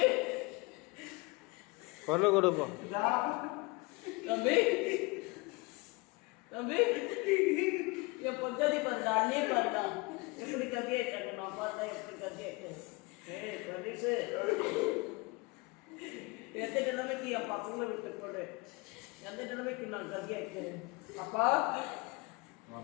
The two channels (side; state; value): right; quieter; 25.9 dB